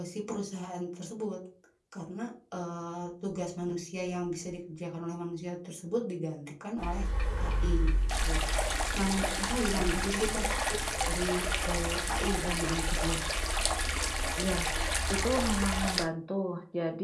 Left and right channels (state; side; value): identical; both; correlation 1.00